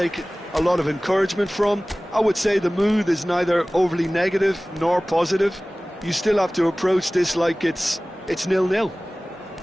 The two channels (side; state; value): both; normal; correlation 0.98